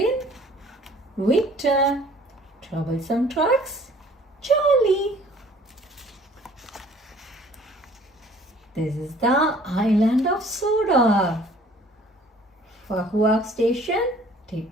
Victor, Troublesome Trucks, Charlie. This is the island of Sodor. Fahuak Station,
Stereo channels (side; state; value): both; normal; correlation 0.54